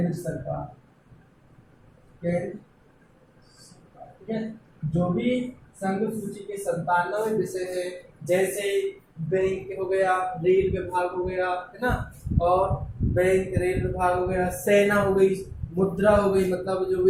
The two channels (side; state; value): both; identical; correlation 1.00